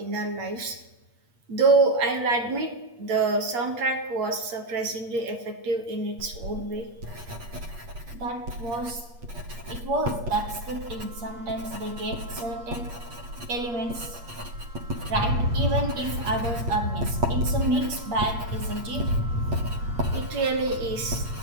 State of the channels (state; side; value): late; left; 8.5 ms